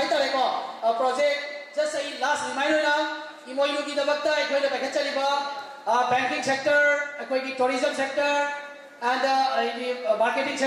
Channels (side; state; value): both; identical; correlation 1.00